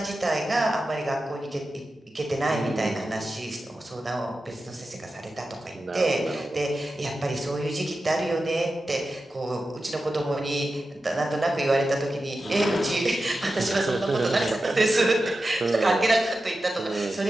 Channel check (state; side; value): normal; both; correlation 0.92